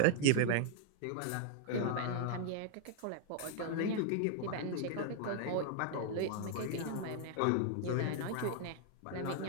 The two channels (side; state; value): both; different; correlation 0.00